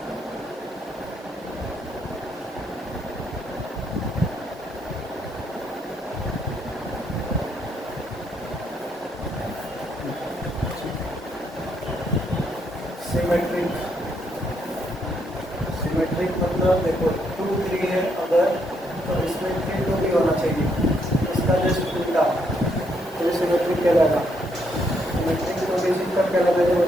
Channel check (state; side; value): normal; both; correlation 0.74